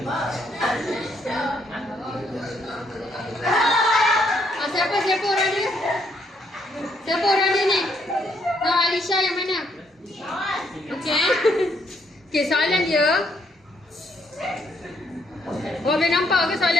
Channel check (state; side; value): normal; both; correlation 0.72